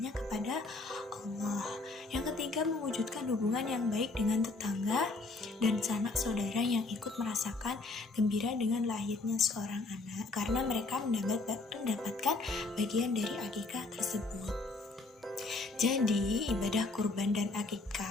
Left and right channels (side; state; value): right; quieter; 3.4 dB